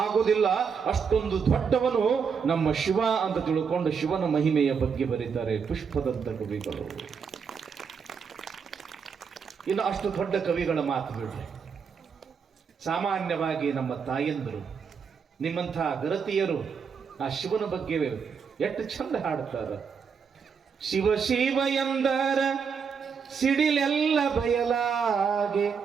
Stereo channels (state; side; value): quieter; left; 6.2 dB